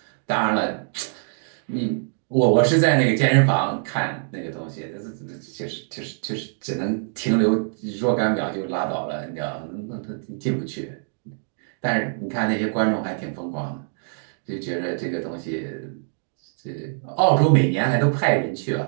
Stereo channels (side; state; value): left; silent; digital silence